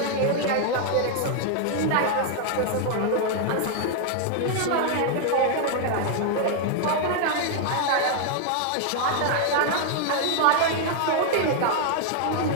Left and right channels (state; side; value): different; both; correlation 0.00